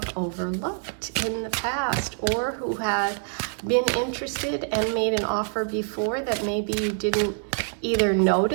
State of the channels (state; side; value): silent; left; digital silence